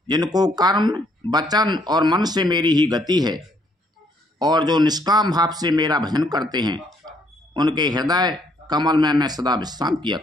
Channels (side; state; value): both; normal; correlation 0.68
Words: जिनको कर्म वचन और मन से मेरी ही गति है और जो निष्काम भाव से मेरा भजन करते हैं, उनके हृदय कमल में मैं सदा विश्राम किया